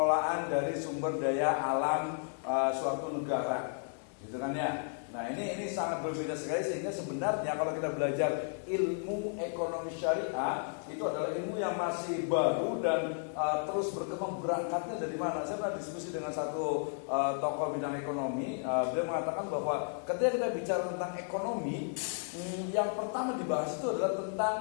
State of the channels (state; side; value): silent; right; 55 dB below the other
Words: dari sumber daya alam suatu negara, gitu kan ya. Nah ini sangat berbeda sekali sehingga sebenarnya kalau kita belajar ilmu ekonomi syariah itu adalah ilmu yang masih baru dan terus berkembang. Berangkatnya dari mana? Saya pernah diskusi dengan satu tokoh bidang ekonomi. Beliau mengatakan bahwa ketika kita bicara tentang ekonomi, yang pertama dibahas itu adalah tentang